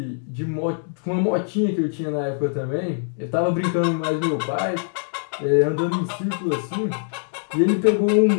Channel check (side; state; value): right; silent; digital silence